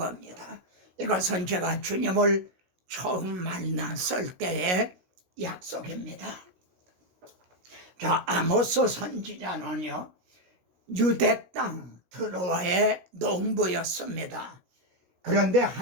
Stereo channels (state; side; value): late; left; 16 ms